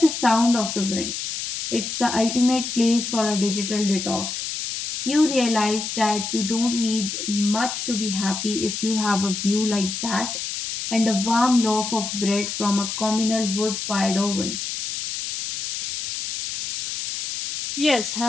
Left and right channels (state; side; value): noise; left; hiss, 5 dB below the sound